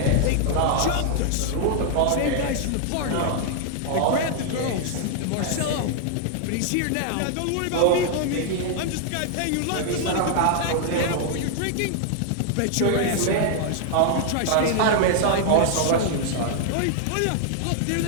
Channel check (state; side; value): different; both; correlation 0.00